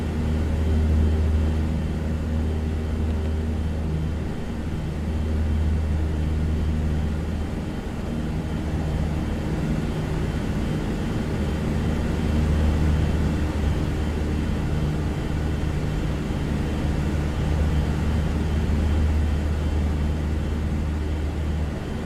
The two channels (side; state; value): both; identical; correlation 1.00